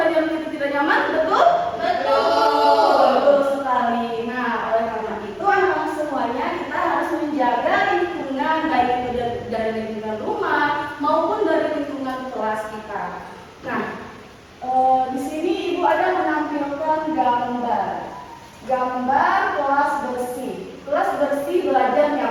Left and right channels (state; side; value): identical; both; correlation 1.00